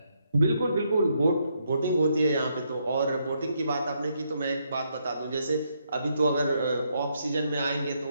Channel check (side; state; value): both; inverted; correlation -0.76